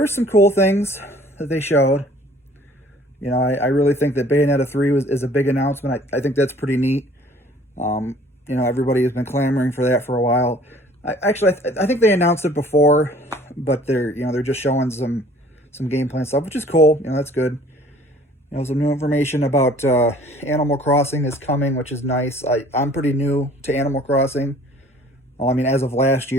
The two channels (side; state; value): both; normal; correlation 0.53